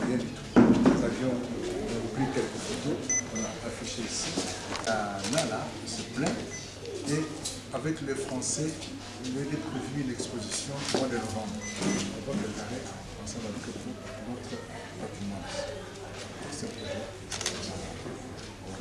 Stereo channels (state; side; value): identical; both; correlation 1.00